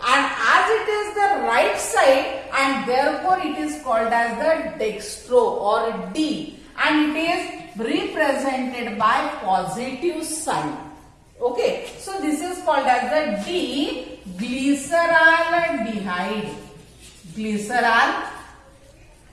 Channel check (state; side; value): identical; both; correlation 1.00